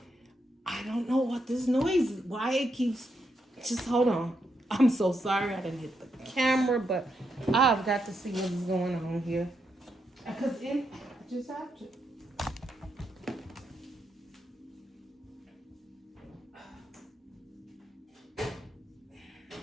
know what this noise is. Why it keeps, just hold on. I'm so sorry I didn't hit the camera, but I've got to see what's going on here. Because I just have to.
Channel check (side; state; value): both; normal; correlation 0.81